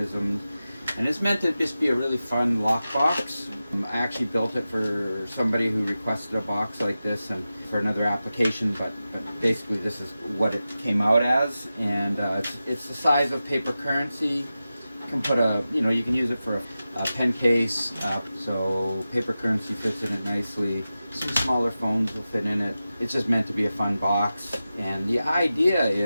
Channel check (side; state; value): both; inverted; correlation -0.93